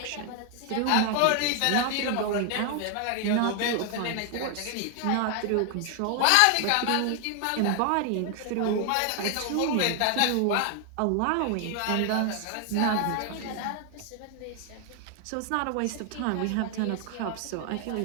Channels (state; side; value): different; both; correlation 0.00